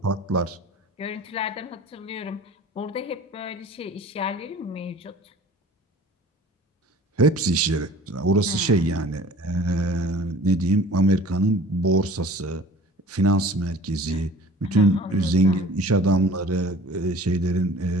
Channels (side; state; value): both; normal; correlation 0.45